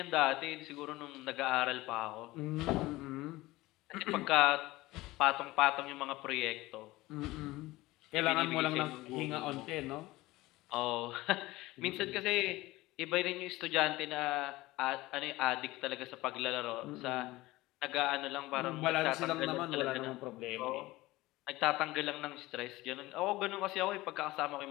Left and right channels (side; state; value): right; quieter; 19.1 dB